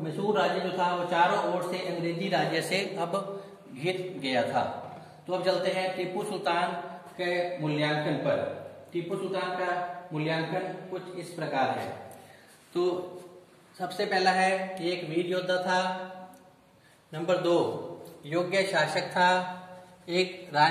मैसूर राज्य जो था वो चारों ओर से अंग्रेजी राज्य से अब घिर गया था। तो अब चलते हैं टीपू सुल्तान के मूल्यांकन पर। टीपू सुल्तान का मूल्यांकन कुछ इस प्रकार है। तो सबसे पहला है कि एक वीर योद्धा था। नंबर 2, योग्य शासक था। एक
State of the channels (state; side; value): identical; both; correlation 1.00